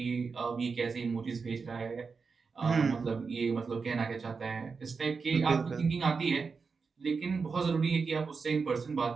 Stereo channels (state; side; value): quieter; left; 5.0 dB